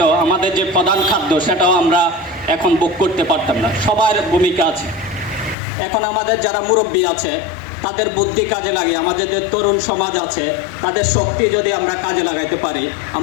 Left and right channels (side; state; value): right; drops out; at 5.6 s